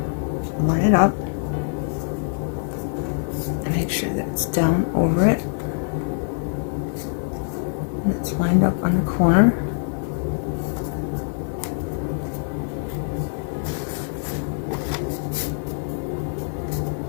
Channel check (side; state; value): right; silent; digital silence